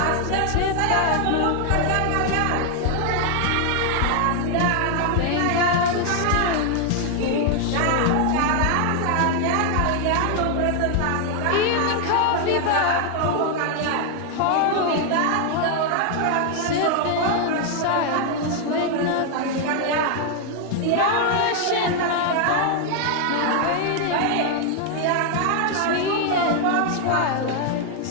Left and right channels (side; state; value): both; different; correlation 0.00